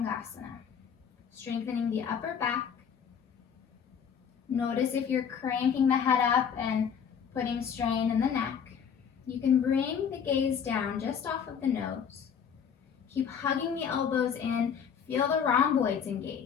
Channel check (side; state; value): right; quieter; 7.4 dB